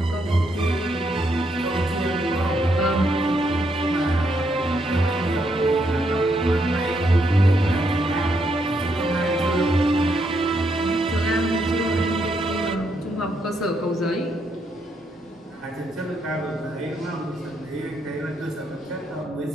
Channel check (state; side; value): normal; both; correlation 0.77